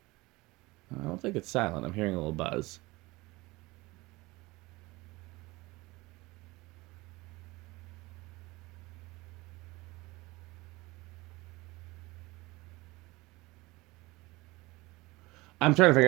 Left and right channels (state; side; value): quieter; left; 21.8 dB